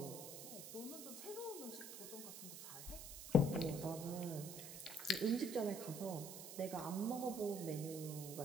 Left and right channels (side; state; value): right; noise; hiss, 9 dB below the sound